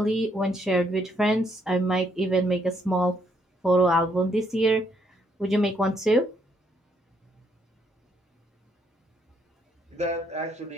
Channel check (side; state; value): both; normal; correlation 0.72